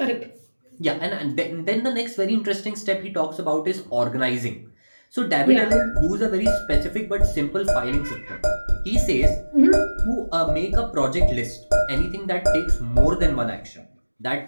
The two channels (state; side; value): inverted; both; correlation -1.00